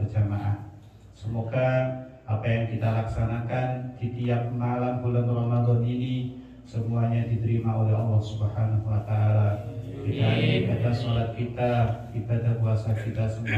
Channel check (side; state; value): both; identical; correlation 1.00